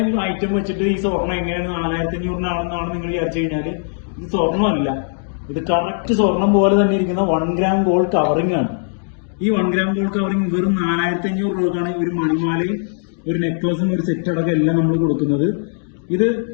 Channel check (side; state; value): right; silent; digital silence